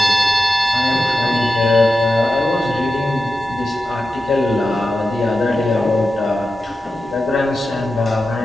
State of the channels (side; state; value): both; normal; correlation 0.91